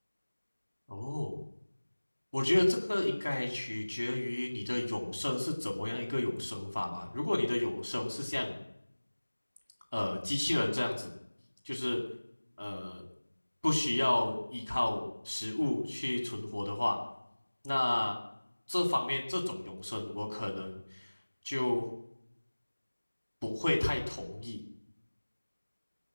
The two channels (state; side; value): inverted; both; correlation -1.00